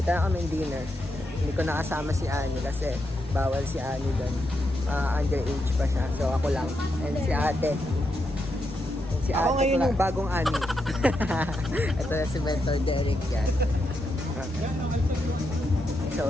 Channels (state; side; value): noise; left; rumble, 19 dB below the sound